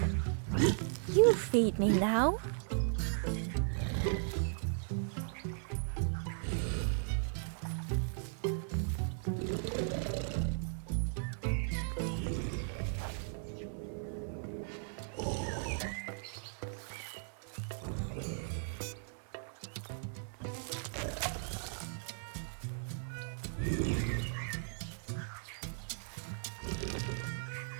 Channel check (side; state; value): left; silent; digital silence